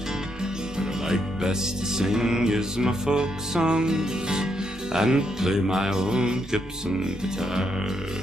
What I like best to sing is my folk songs and play my own Gibson guitar.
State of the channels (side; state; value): both; normal; correlation 0.78